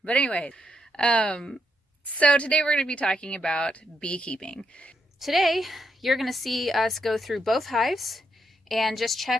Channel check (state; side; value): normal; both; correlation 0.79